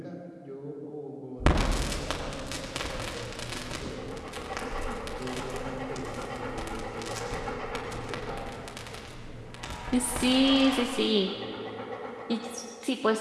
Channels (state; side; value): identical; both; correlation 1.00